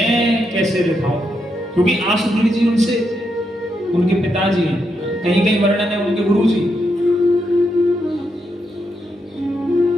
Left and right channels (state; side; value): normal; both; correlation 0.81